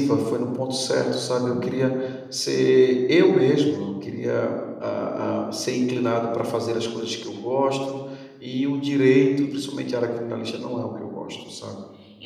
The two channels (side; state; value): both; identical; correlation 1.00